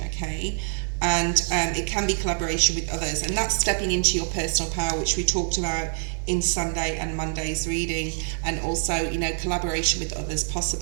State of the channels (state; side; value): silent; left; 60 dB below the other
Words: okay? And it can be collaboration with others, and that's stepping into your personal power, which we talked about in Sunday and Monday's reading, and also, you know, collaboration with others,